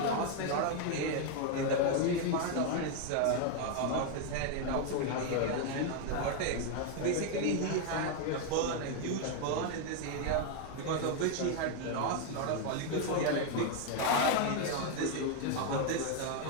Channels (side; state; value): both; different; correlation 0.01